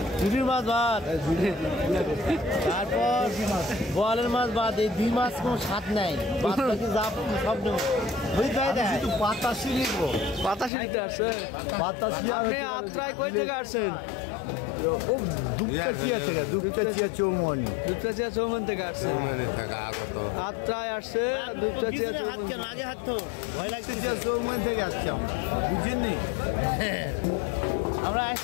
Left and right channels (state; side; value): drops out; right; at 10.7 s